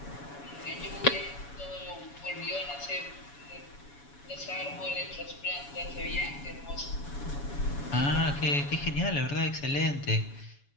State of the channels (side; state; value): right; late; 7.1 ms